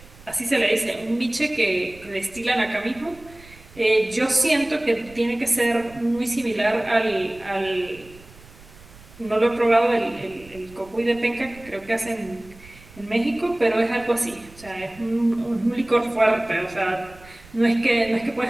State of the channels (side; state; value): right; noise; rumble, 22 dB below the sound